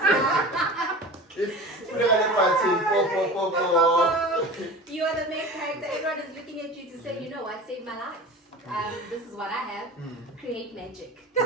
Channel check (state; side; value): normal; both; correlation 0.35